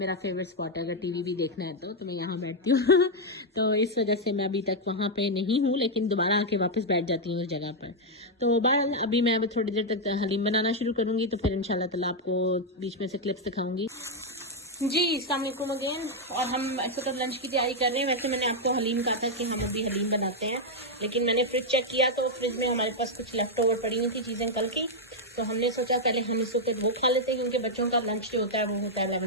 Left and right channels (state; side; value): normal; both; correlation -0.01